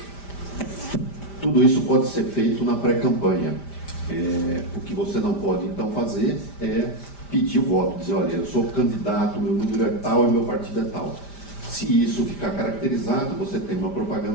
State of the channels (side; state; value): right; late; 5.1 ms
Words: isso pode ser feito na pré-campanha. O que você não pode então fazer é pedir o voto, dizer, olha, eu sou candidato, meu número é tal e meu partido é tal. Se isso ficar caracterizado, você tem uma